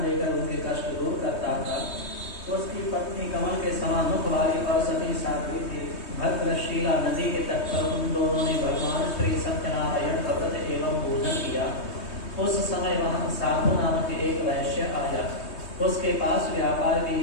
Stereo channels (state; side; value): late; right; 3.2 ms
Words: देकर उनके कष्ट दूर करता था। उसकी पत्नी कमल के समान मुख वाली और सती साध्वी थी। भद्रशीला नदी के तट पर उन दोनों ने भगवान श्री सत्यनारायण का व्रत एवं पूजन किया। उस समय वहां साधु नामक एक वैश्य आया। उसके पास व्यापार के